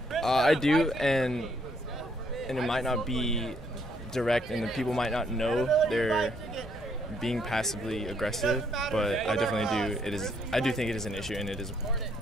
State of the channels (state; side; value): normal; both; correlation 0.70